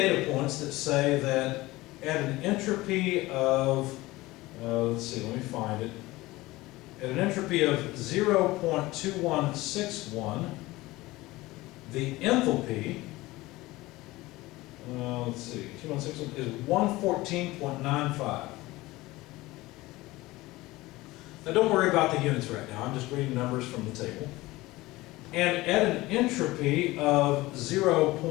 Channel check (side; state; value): right; quieter; 19.5 dB